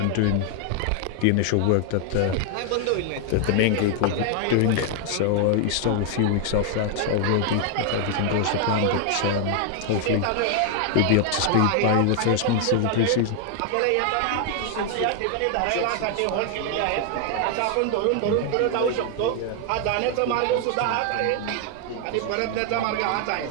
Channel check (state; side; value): different; both; correlation 0.00